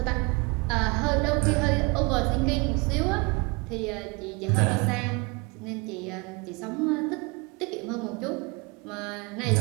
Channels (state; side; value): quieter; left; 28.2 dB